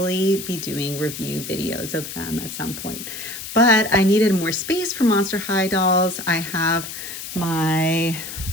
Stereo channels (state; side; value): noise; left; hiss, 9 dB below the sound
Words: be doing review videos of them at some point. But I needed more space for Monster High dolls. I have my